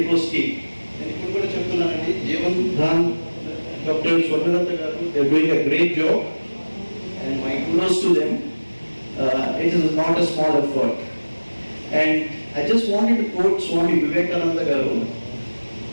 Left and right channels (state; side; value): inverted; both; correlation -1.00